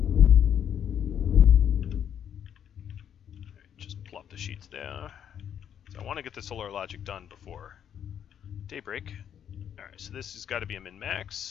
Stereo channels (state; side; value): quieter; right; 9.1 dB